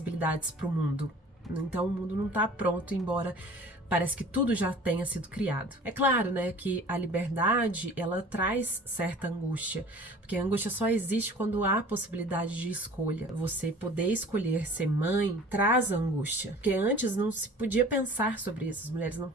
para o mundo. Então o mundo não tá pronto, embora parece que tudo já tenha sido criado. É claro, né, que a liberdade, ela traz certa angústia, porque a angústia só existe quando há possibilidade de escolha. Você poder escolher ser mãe traz angústia, porque antes não se podia pensar sobre isso, as mulheres não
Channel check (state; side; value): normal; both; correlation 0.45